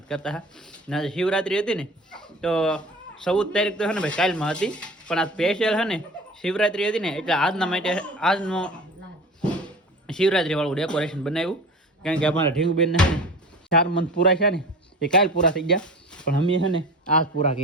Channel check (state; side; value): normal; both; correlation 0.37